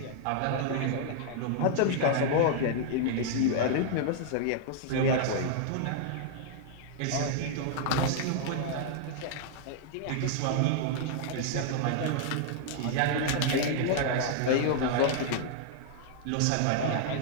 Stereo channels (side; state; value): both; different; correlation -0.01